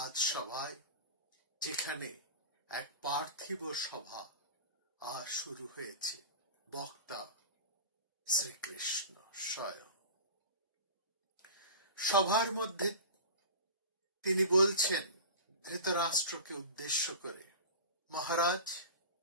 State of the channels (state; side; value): inverted; both; correlation -0.33